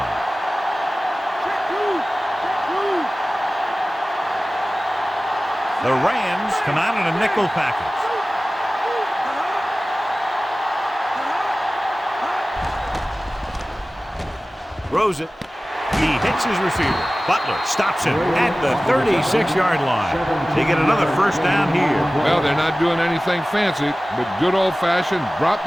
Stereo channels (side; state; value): both; normal; correlation 0.97